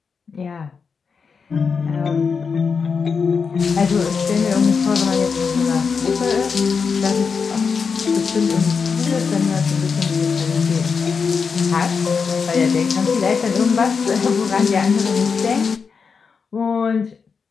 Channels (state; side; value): quieter; right; 5.5 dB